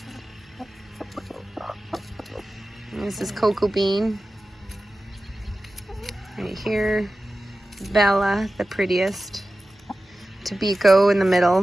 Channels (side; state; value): both; normal; correlation 0.95